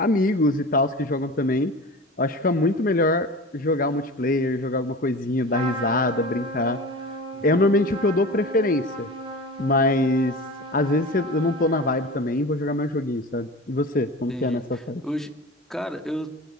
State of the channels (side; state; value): both; normal; correlation 0.33